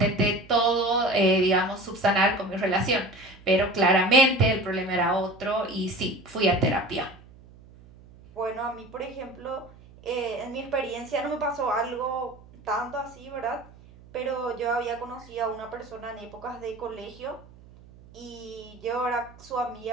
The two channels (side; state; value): right; noise; hum, 22 dB below the sound